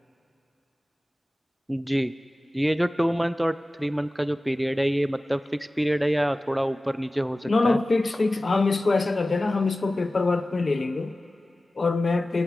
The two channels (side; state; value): both; normal; correlation 0.96